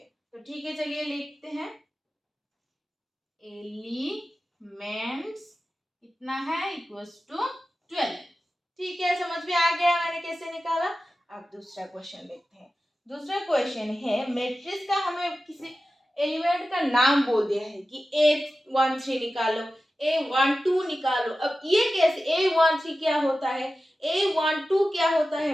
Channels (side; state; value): both; normal; correlation 0.94